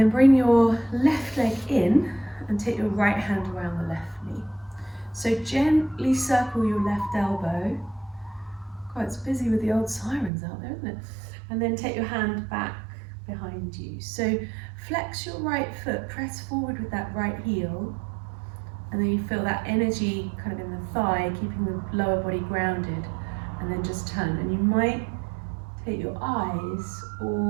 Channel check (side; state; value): left; drops out; at 10.3 s